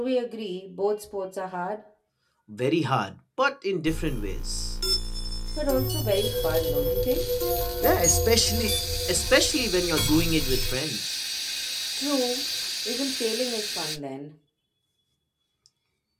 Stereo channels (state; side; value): identical; both; correlation 1.00